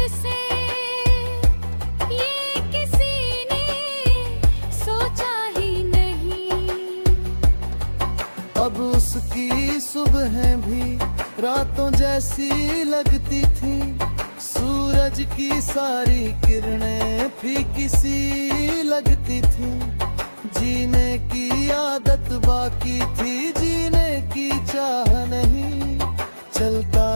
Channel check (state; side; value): inverted; both; correlation -1.00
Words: से, ये किसी ने सोचा ही नहीं। अब उसकी सुबह भी रातों जैसी लगती थी। सूरज की सारी किरणें फीकी सी लगती थी। जीने की आदत बाकी थी, जीने की चाह नहीं। चलता